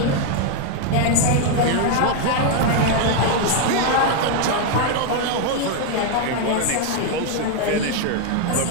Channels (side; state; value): both; different; correlation 0.00